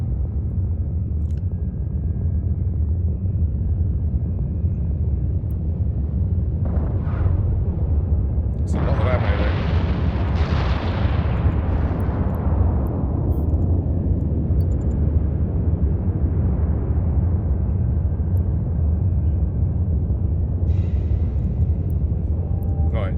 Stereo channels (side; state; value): both; identical; correlation 1.00